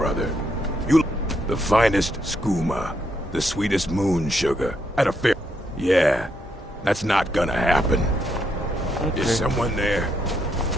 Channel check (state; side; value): normal; both; correlation 0.77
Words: You the finest skooma, the sweetest moon sugar, at a fair... Yeah, that's not gonna happen. Okay. Is someone there?